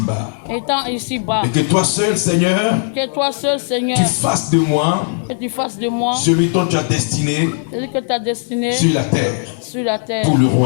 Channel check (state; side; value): silent; right; digital silence